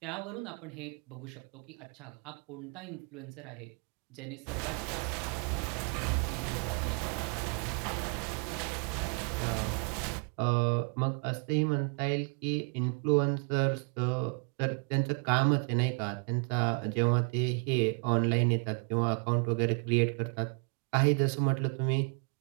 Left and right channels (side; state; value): left; quieter; 38.4 dB